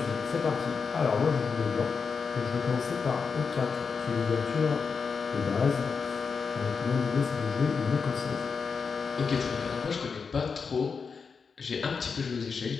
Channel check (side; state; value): right; quieter; 5.4 dB